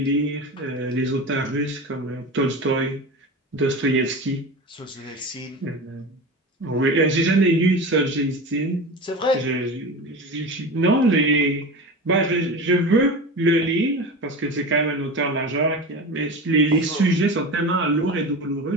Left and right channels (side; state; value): both; normal; correlation 0.28